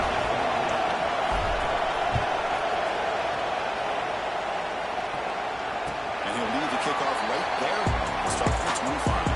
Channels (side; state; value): both; identical; correlation 1.00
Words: And he'll leave the kickoff right there. We'll start from the 25.